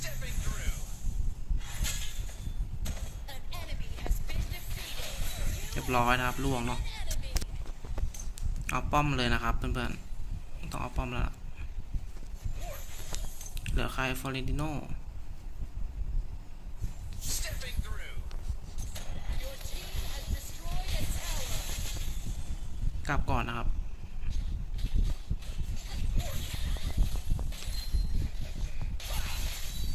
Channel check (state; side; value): identical; both; correlation 1.00